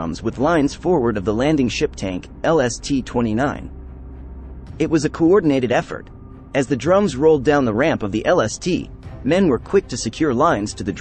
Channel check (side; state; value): both; identical; correlation 1.00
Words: with lines forward of the landing ship tank, LST-29. It was a coordinated effort. As the drums rolled down the ramp of the LST, men were quick to secure lines to the